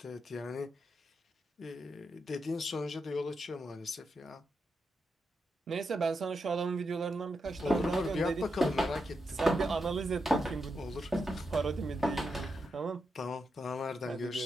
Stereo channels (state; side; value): normal; both; correlation 0.85